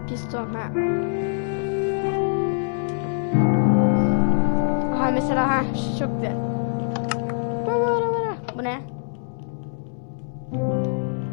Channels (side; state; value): right; silent; 63 dB below the other